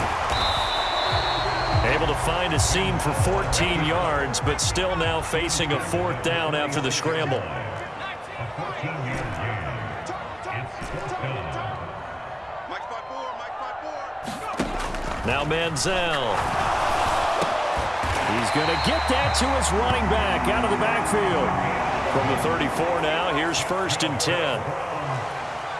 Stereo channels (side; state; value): both; identical; correlation 1.00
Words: Able to find a seam for 14 yards, but still now facing a 4th down after the scramble. Mike spot 4, Mike Now Manziel. He's going to get that to his running back out of the backfield. From the 34 now, here's 1st and 10.